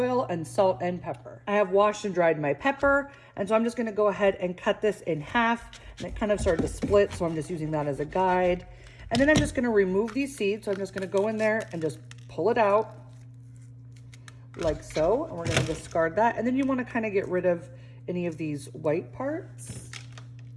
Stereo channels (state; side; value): identical; both; correlation 1.00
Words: and salt and pepper. I have washed and dried my pepper, and so I'm just gonna go ahead and cut this in half, and it kind of started to split, so I'm just using that as a guide. And then I'm just gonna remove these seeds, so I'm just gonna go in there and just pull it out like so, and we're gonna discard that. And then you wanna kind of get rid of any of these white parts.